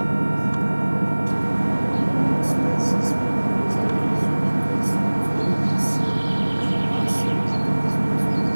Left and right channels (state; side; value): inverted; both; correlation -1.00